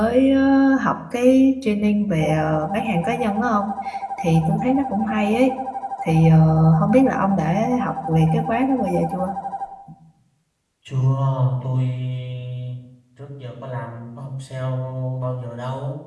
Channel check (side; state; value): both; identical; correlation 1.00